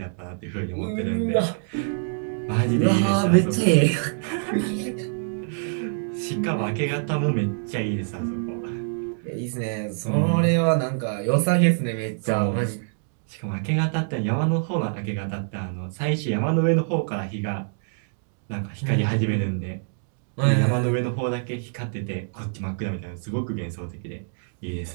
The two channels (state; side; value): silent; left; digital silence